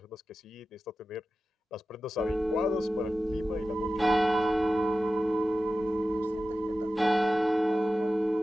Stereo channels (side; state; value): both; normal; correlation 0.94